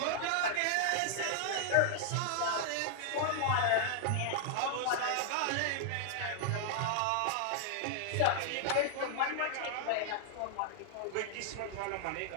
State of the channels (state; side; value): different; both; correlation -0.01